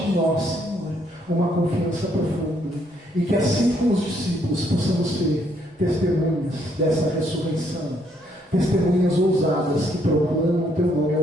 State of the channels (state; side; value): normal; both; correlation 0.70